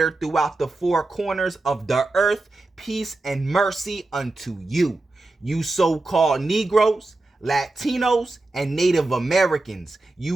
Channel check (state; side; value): quieter; left; 3.0 dB